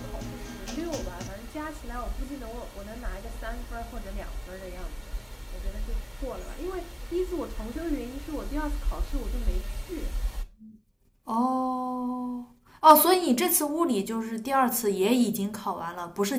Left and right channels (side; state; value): both; identical; correlation 1.00